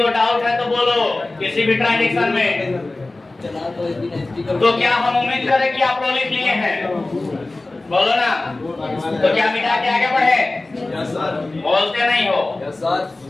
डाउट है तो बोलो। किसी भी ट्रांजैक्शन में तो क्या हम उम्मीद करें कि आप लोग लिख लिए हैं? बोलो ना। तो क्या मिटा के आगे बढ़े? बोलते नहीं हो।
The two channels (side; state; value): right; quieter; 3.0 dB